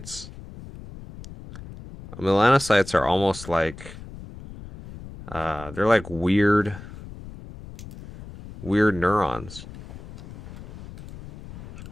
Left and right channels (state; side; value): noise; left; rumble, 15 dB below the sound